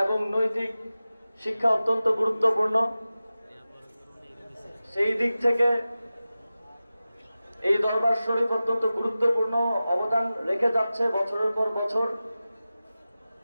এবং নৈতিক শিক্ষা অত্যন্ত গুরুত্বপূর্ণ। সেই দিক থেকে এই দরবার শরীফ অত্যন্ত গুরুত্বপূর্ণ অবদান রেখে যাচ্ছে বছরের পর বছর।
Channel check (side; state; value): both; inverted; correlation -0.96